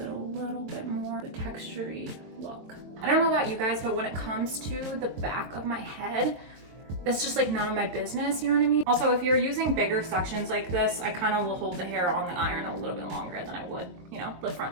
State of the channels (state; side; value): late; left; 23 ms